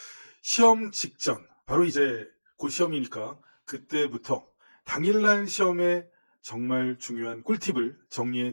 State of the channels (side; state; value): both; inverted; correlation -1.00